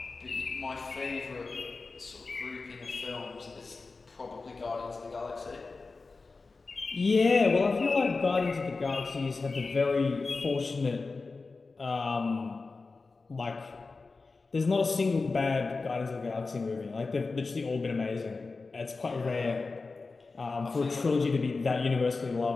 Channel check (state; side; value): quieter; right; 4.0 dB